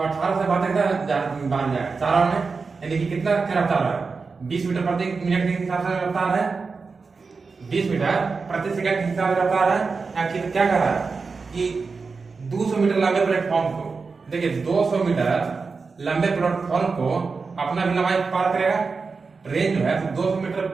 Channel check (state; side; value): quieter; left; 4.6 dB